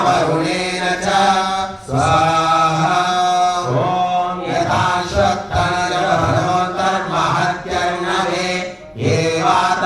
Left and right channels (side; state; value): both; identical; correlation 1.00